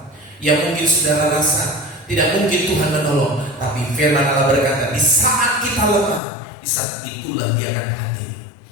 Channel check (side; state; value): right; drops out; at 6.2 s